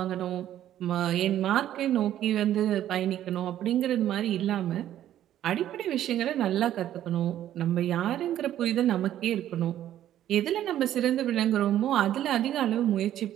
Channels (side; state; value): left; quieter; 11.9 dB